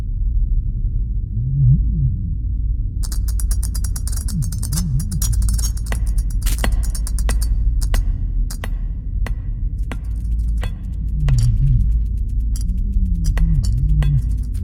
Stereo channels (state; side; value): identical; both; correlation 1.00